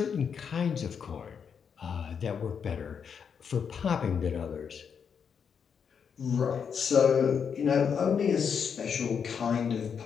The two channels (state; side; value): quieter; right; 6.9 dB